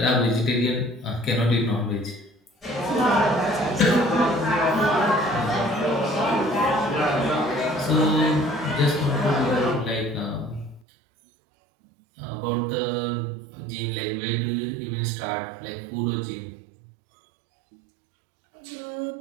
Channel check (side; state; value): left; drops out; at 10.8 s